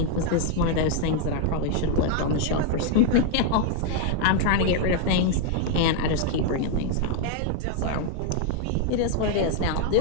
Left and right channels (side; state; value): both; different; correlation 0.00